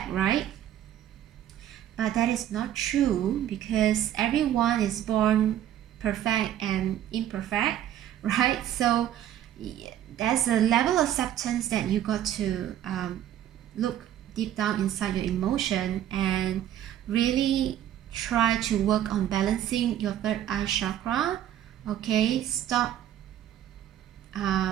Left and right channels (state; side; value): quieter; left; 11.4 dB